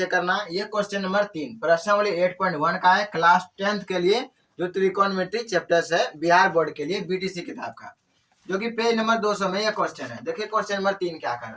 करना है। ये क्वेश्चन नंबर 3 प्रश्नावली 8.1 का है, क्लास 10th के लिए जो त्रिकोणमिति चैप्टर्स है बिहार बोर्ड के लिए बीटीसी किताब का, जो कि पेज नंबर 200 में यह क्वेश्चन है। देखिए क्वेश्चन नंबर 3 क्या कर रहा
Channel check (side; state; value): both; identical; correlation 1.00